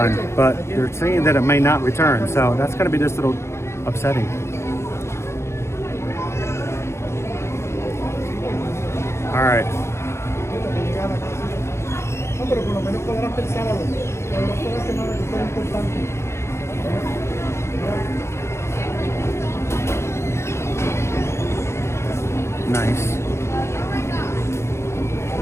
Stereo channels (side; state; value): right; late; 0.13 ms